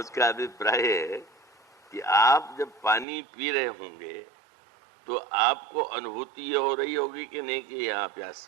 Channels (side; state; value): left; drops out; at 3.1 s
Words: अभिप्राय है कि आप जब पानी पी रहे होंगे तो आपको अनुभूति ये हो रही होगी कि नहीं कि यहाँ प्यास